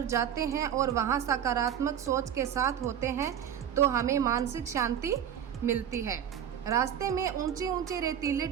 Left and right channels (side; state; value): left; quieter; 9.3 dB